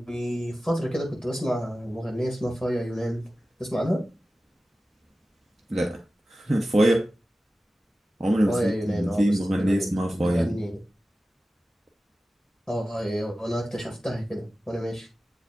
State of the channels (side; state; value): both; normal; correlation 0.95